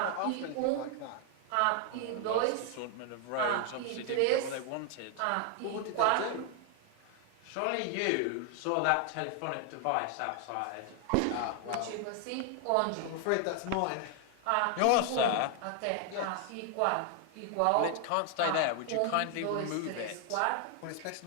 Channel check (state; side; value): different; both; correlation 0.00